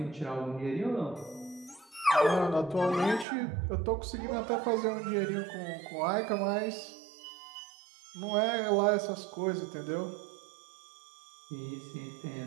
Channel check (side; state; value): left; drops out; at 3.2 s